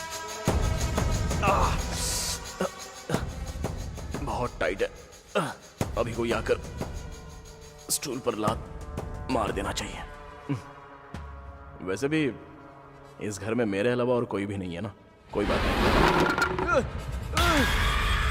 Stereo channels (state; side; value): identical; both; correlation 1.00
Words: बहुत टाइट है। अभी कोई आकर स्टूल पर लात मार देना चाहिए। वैसे भी इस घर में मेरे अलावा और कोई भी नहीं है ना। कोई बात नहीं।